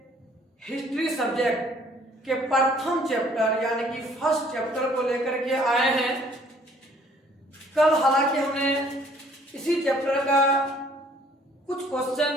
हिस्ट्री सब्जेक्ट के प्रथम चैप्टर यानी कि फर्स्ट चैप्टर को लेकर के आए हैं। कल हालांकि हमने इसी चैप्टर का कुछ क्वेश्चन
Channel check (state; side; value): normal; both; correlation 0.59